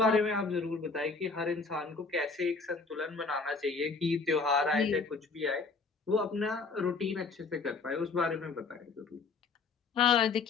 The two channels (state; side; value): quieter; right; 4.4 dB